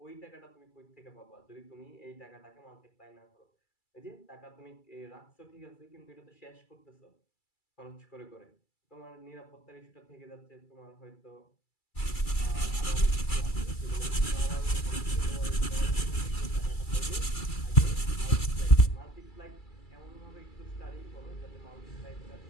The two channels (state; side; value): late; right; 2.3 ms